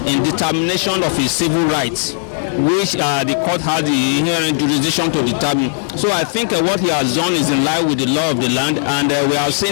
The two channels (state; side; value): silent; right; digital silence